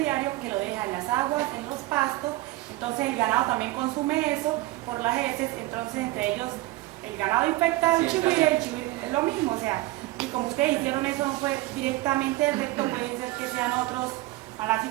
que lo deja en las aguas, en los pastos, entonces el ganado también consume eso por las heces, entonces entre ellos el ganado infecta al chigüire, el chigüire es lo mismo, o sea, y como ustedes hicieron eso no fue directamente del recto, puede ser que sean otros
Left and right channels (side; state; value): left; quieter; 18.7 dB